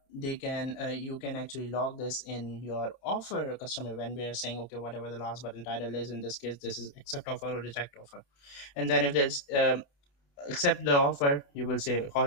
can actually log this in your offer or customer when we are saying, okay, whatever the last one title is, in this case this is accept offer or reject offer. And then if there's accept the offer, you will say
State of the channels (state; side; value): late; right; 28 ms